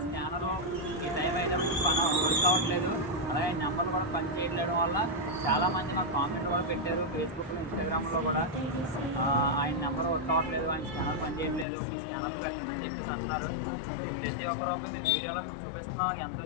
స్కానరు ఈ టైం అయితే వర్క్ అవ్వట్లేదు, అలాగే నెంబర్లు కూడా పని చేయడం వల్ల చాలామంది మాకు కామెంట్ కూడా పెట్టారు ఫేస్బుక్లో, ఇన్స్టాగ్రామ్లో కూడా. ఆయన నెంబర్ వర్క్ అవ్వట్లేదు, ఆయన స్కానర్ పని చేయట్లేదు, ఈ స్కానర్ పెట్టండి చెప్పేసి అంటున్నారు. ప్రతి ఒక్కరు మేము వీడియోలో చూపిస్తున్నాం ఎంత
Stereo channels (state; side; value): drops out; right; at 11.7 s